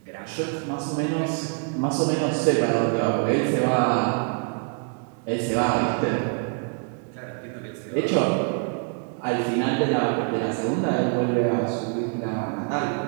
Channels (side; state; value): left; quieter; 38.7 dB